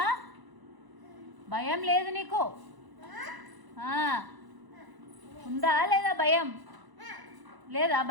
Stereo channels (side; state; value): left; late; 1.0 ms